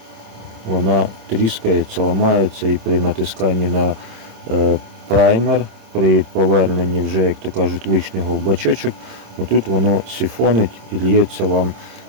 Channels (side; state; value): left; late; 27 ms